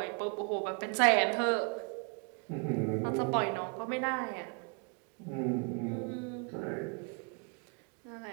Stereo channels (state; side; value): quieter; left; 37.1 dB